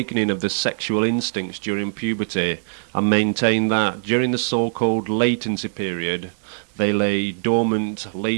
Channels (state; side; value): silent; left; digital silence